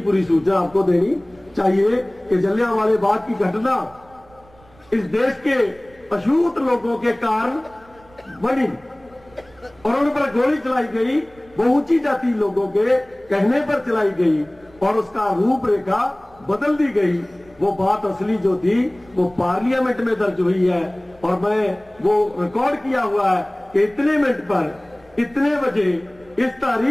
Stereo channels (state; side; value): noise; right; rumble, 28 dB below the sound